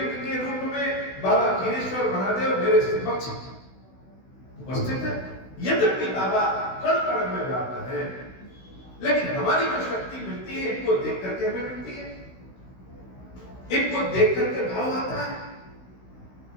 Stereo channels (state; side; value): late; right; 16 ms